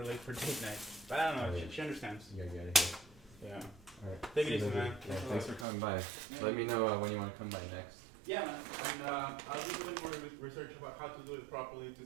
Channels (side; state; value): left; drops out; at 5.7 s